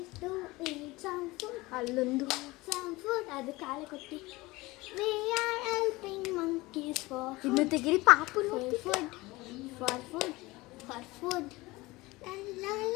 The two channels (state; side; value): quieter; right; 21.2 dB